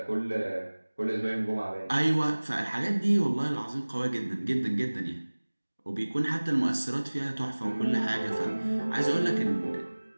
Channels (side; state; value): both; inverted; correlation -1.00